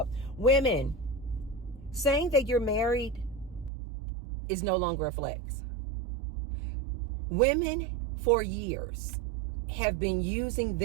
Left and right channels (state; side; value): drops out; left; at 3.7 s